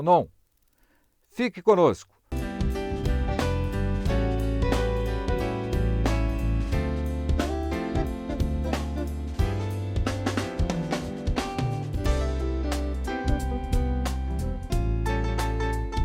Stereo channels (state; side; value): identical; both; correlation 1.00